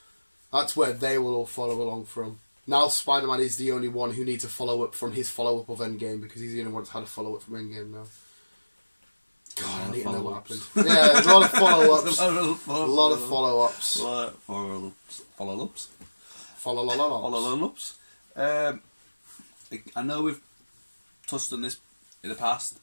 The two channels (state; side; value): inverted; both; correlation -1.00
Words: That's where they will all follow along from. Now Spider-Man is the only one who needs a follow-up from his follow-up of Endgame, because he's the only one that's had a follow-up from Endgame now. God, I need to know what happened. Yeah, there's a lot of follow-ups. A lot of follow-ups. Follow-ups. Follow-ups. I know we've touched on this in the past,